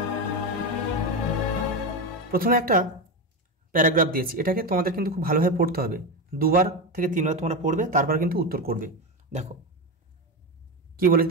প্রথমে একটা প্যারাগ্রাফ দিয়েছি, এটাকে তোমাদের কিন্তু খুব ভালোভাবে পড়তে হবে। 2বার থেকে 3বার তোমরা পড়বে, তারপর কিন্তু উত্তর করবে। দেখো কি বলেছে,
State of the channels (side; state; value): both; normal; correlation 0.15